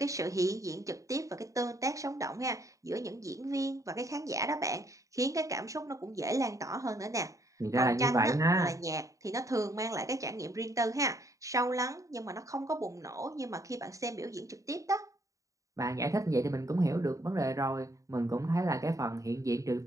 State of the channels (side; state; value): left; late; 0.16 ms